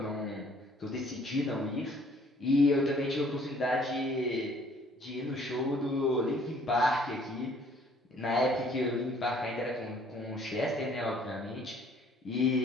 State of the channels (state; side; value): normal; both; correlation 0.59